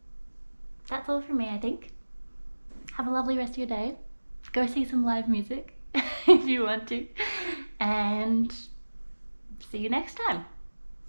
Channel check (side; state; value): both; inverted; correlation -1.00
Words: That's all from me, I think. Have a lovely rest of your day. Go see some live music if you want to. And see you next time.